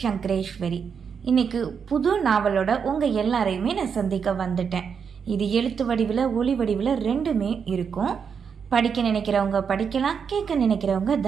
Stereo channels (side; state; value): left; quieter; 6.6 dB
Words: இன்னைக்கு புது நாவலோட உங்கள் எல்லாரையுமே நான் சந்திக்க வந்துட்டேன். இது எழுத்து வடிவில் ஒளி வடிவில் ரெண்டுமே இருக்கும். படிக்க நினைக்கிறவங்க படிக்கலாம், கேட்க நினைக்கிறவங்க